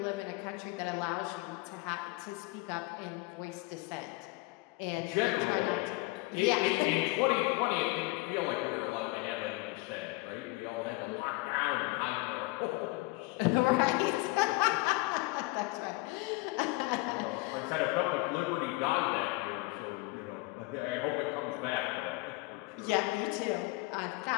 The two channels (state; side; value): quieter; right; 23.1 dB